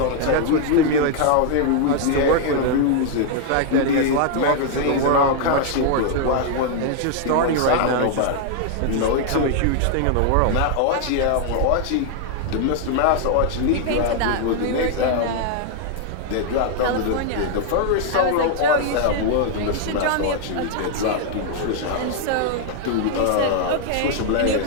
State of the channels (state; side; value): different; both; correlation 0.00